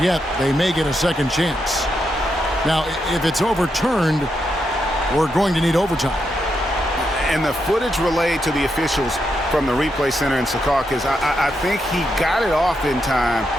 yet. They may get a second chance. Now, if it's overturned, we're going to need overtime. And the footage relayed to the officials from the replay center in Secaucus, I think he got it off in time.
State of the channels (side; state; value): both; normal; correlation 0.83